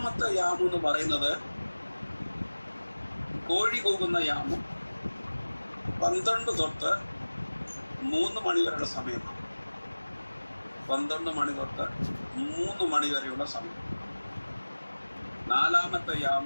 യാമം എന്ന് പറയുന്നത് കോഴി കൂകുന്ന യാമം. 12 തൊട്ട് 3 മണി വരെയുള്ള സമയമാണ്. 12 മണി തൊട്ട് 3 മണി വരെയുള്ള സമയം. 4-ാമത്തെ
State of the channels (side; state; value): both; inverted; correlation -1.00